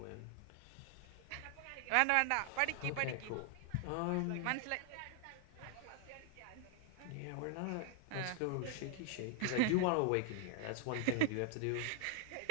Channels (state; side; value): different; both; correlation 0.00